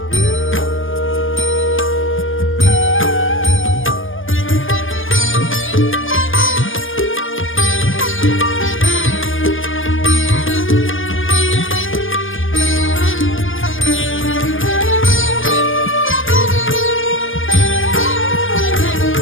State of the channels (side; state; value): right; late; 0.58 ms